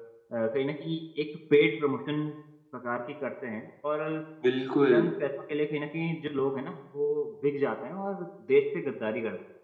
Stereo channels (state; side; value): identical; both; correlation 1.00